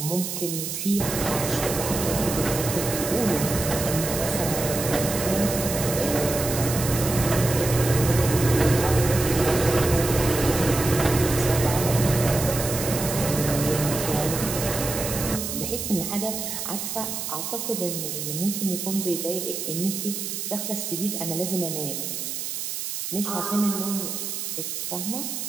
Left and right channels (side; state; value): right; noise; hiss, 4 dB below the sound